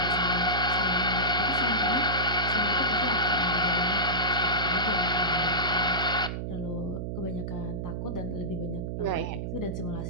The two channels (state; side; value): noise; right; hum, 4 dB below the sound